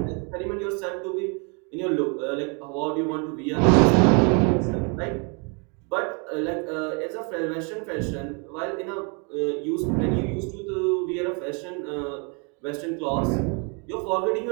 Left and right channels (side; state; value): left; quieter; 34.7 dB